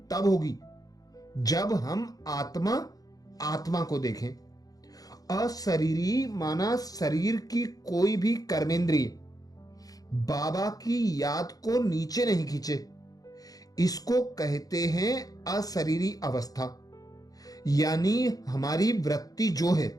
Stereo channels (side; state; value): right; late; 0.18 ms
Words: तब होगी जब हम आत्मा आत्मा को देखें। अशरीरी माना शरीर की कोई भी कर्मेंद्रिय बाबा की याद को नीचे नहीं खींचे। इसको कहते हैं अशरीरी अवस्था। यानी हमारी वृत्ति जो है,